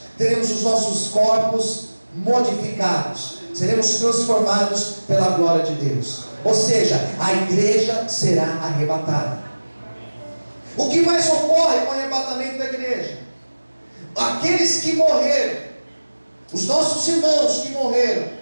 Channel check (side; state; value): both; inverted; correlation -1.00